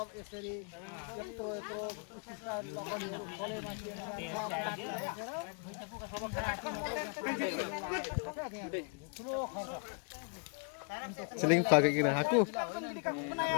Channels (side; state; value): right; quieter; 39.2 dB